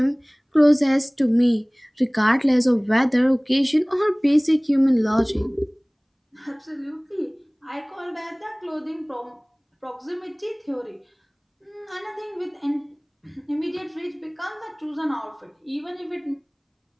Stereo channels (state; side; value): identical; both; correlation 1.00